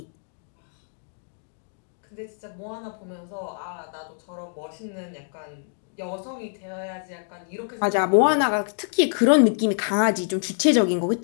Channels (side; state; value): right; silent; digital silence